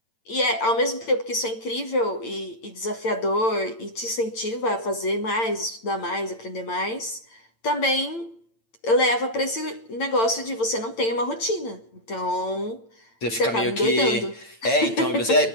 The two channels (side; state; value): right; late; 8.8 ms